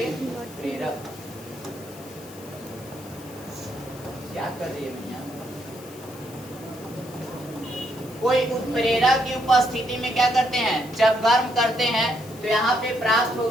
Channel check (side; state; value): left; noise; hiss, 20 dB below the sound